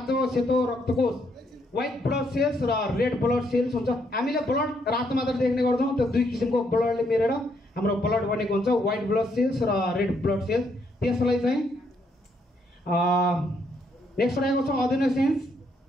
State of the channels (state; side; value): normal; both; correlation 0.73